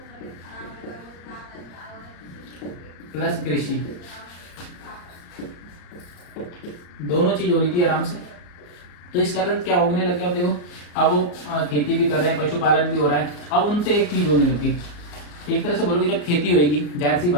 प्लस कृषि, दोनों चीज हो रही थी आराम से। तो इस कारण क्या होने लग गया, अब देखो अब वो खेती भी कर रहे हैं, पशुपालन भी हो रहा है। अब उनसे एक चीज होने लगी, एक तरह से बोलोगे जब खेती होगी, जाहिर सी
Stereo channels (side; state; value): right; late; 34 ms